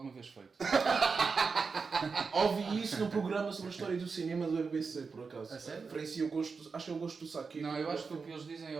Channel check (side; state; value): left; quieter; 4.9 dB